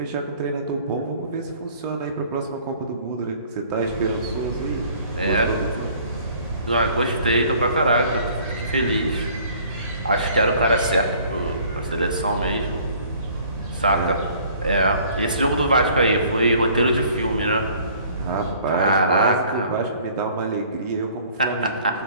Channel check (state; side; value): inverted; both; correlation -0.55